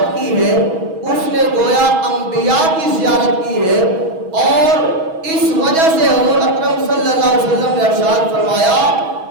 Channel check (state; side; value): late; left; 6.2 ms